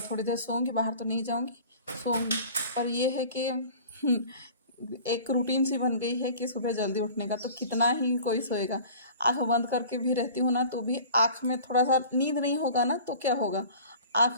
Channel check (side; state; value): both; inverted; correlation -0.43